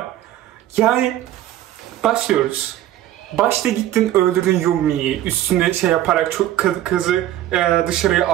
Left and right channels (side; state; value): left; quieter; 13.0 dB